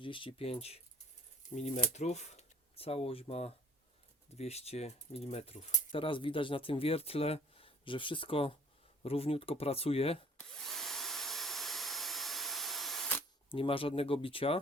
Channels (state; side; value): normal; both; correlation 0.53